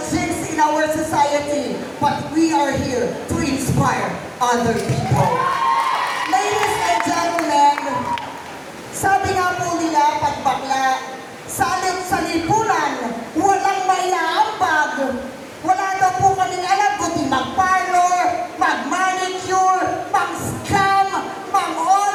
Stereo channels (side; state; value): both; identical; correlation 1.00